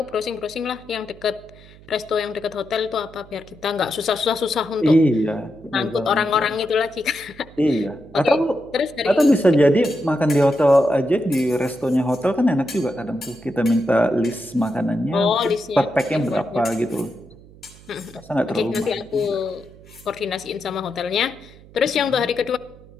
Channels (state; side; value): noise; right; hum, 22 dB below the sound